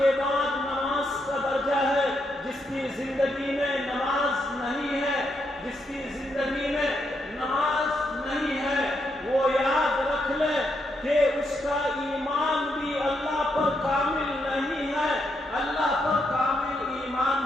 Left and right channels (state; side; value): normal; both; correlation 0.79